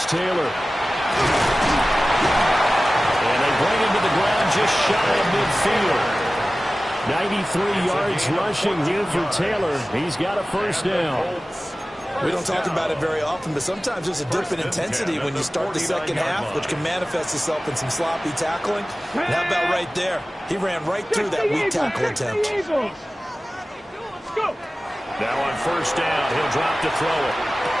Taylor. And they bring him to the ground just shy of midfield. 93 yards rushing here for Taylor. He's got a first down. We don't talk about it very often, but sometimes there's a dip in intensity when you start the second half, which can manifest itself in some sloppy tackling. And how about right there? He ran right through that weak tackle attempt. Let's go. Now on first down, he'll drop to throw it.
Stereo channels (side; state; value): both; normal; correlation 0.97